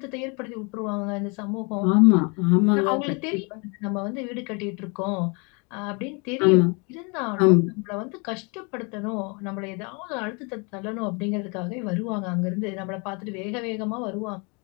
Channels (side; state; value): right; quieter; 32.1 dB